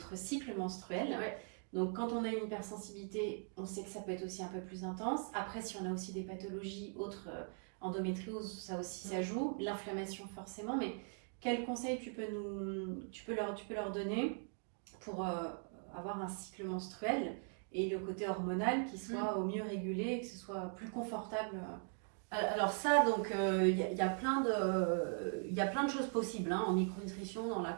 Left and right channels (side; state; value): left; silent; 51 dB below the other